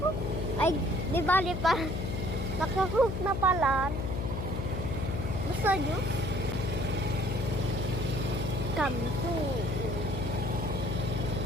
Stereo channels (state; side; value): noise; left; hum, 3 dB below the sound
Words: Ay, di bali pa. Nakakook na pala. Gusto juice? Kampo.